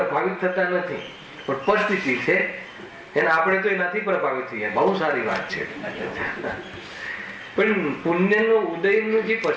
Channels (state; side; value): identical; both; correlation 1.00